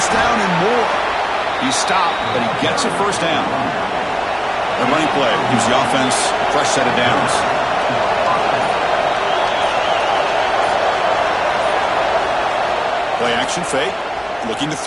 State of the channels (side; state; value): both; identical; correlation 1.00